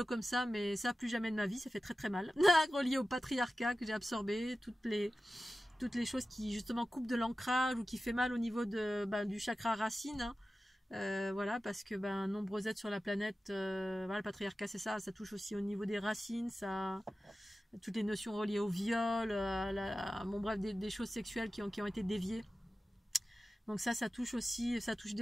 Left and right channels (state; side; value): normal; both; correlation 0.95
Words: comme ça, mais ça, plus jamais de ma vie, ça fait très très mal. Relié au patriarcat que j'ai absorbé, toutes les choses qui justement coupent de l'ancrage ou qui fait mal au niveau du chakra racine, hein. Voilà, parce que nombreux êtres sur la planète, voilà, le patriarcat, c'est ça touche aussi au niveau des racines, ça, toutes les notions reliées au viol, bon bref, des choses sexuelles qui ont été déviées. Donc ça touche aussi, ça touche